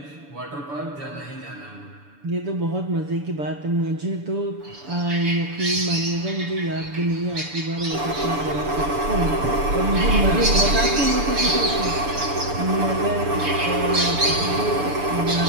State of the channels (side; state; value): left; late; 6.9 ms